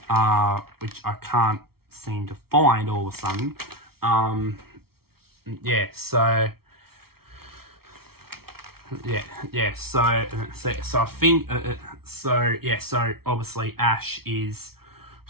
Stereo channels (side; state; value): left; late; 0.94 ms